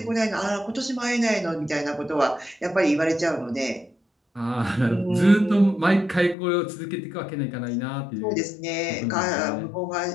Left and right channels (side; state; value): right; drops out; at 6.4 s